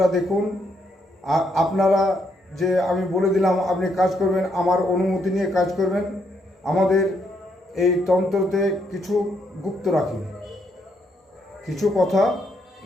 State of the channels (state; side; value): normal; both; correlation 0.75